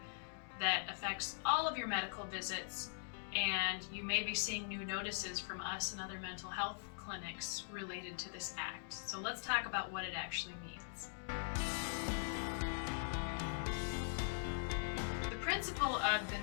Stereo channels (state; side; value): silent; right; digital silence